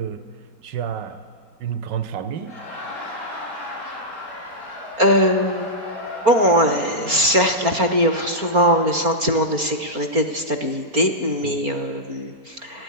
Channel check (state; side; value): late; left; 4.3 ms